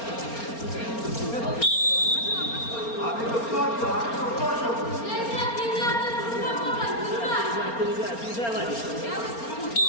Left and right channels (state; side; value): late; right; 4.3 ms